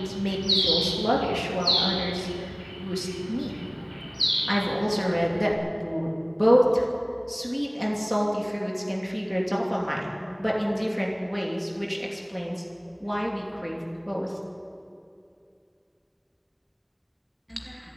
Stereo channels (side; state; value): both; identical; correlation 1.00